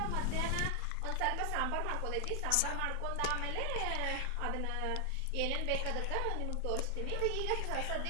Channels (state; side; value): different; both; correlation 0.00